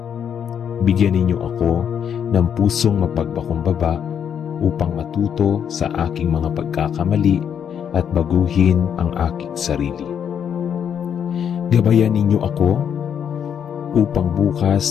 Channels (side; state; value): right; quieter; 8.3 dB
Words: Bigyan ninyo ako ng pusong mapagpakumbaba upang matuto sa aking mga pagkakamali at baguhin ang aking sarili. Gabayan ninyo ako upang bukas